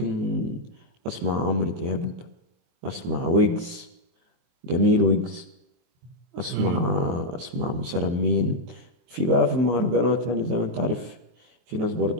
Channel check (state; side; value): late; left; 23 ms